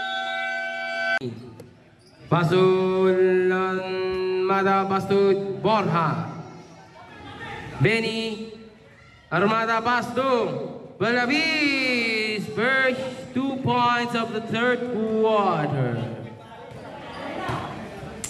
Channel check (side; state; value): both; identical; correlation 1.00